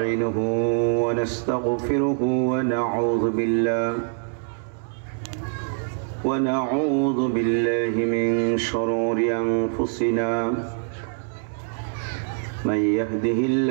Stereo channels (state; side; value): silent; left; digital silence